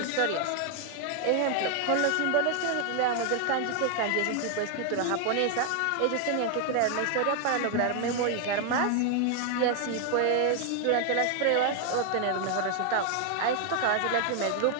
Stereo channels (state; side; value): different; both; correlation 0.00